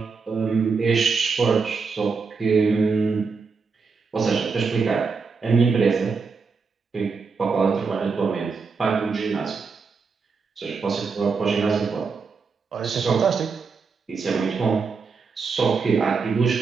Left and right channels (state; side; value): quieter; left; 5.0 dB